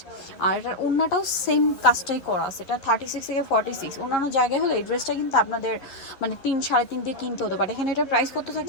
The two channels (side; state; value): right; late; 11 ms